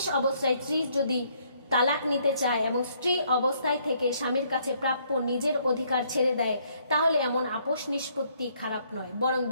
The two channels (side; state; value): both; inverted; correlation -0.68